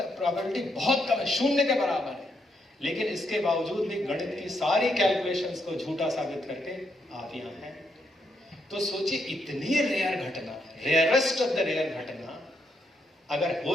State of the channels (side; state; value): both; normal; correlation 0.77